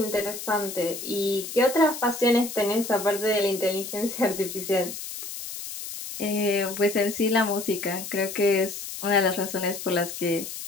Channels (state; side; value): noise; left; hiss, 9 dB below the sound